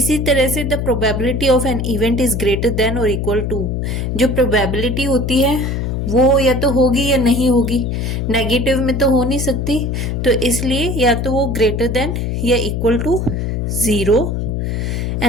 तरह से the probability of an event is greater then और इक्वल टू, जो प्रोबेबिलिटी होती है वो या तो होगी या नहीं होगी, नेगेटिव में तो हो नहीं सकती, तो इसलिए या तो वो ग्रेटर देन या equal to 0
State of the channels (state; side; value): noise; left; hum, 1 dB below the sound